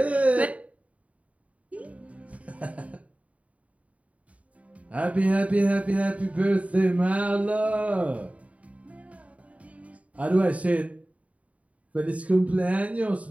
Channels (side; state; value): left; late; 0.067 ms